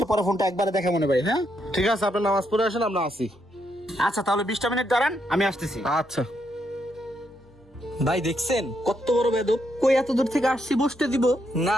পরে ফোনটা একবারে দেখা মনে ভাই। হ্যাঁ ঠিক আছে, আপনি নামাজ পড়ে আসেন, আমরা আসি। আচ্ছা তাহলে 20টা মিনিট দাঁড়ান, আমি আসতেছি। আচ্ছা। ভাই দেখছেন কত বড় বেদব, কই এত দূর থেকে আসছি বসতে দিব না,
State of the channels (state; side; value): normal; both; correlation 0.78